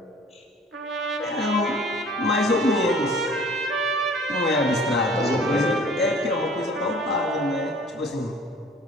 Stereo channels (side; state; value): both; normal; correlation 0.50